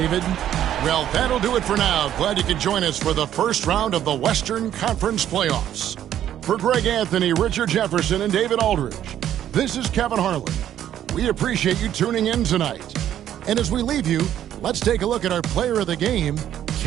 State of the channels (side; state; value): left; quieter; 11.0 dB